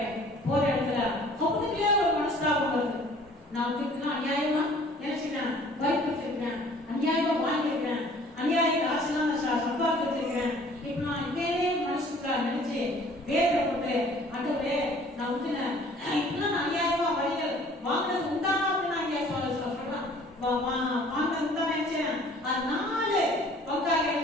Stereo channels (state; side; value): normal; both; correlation 0.53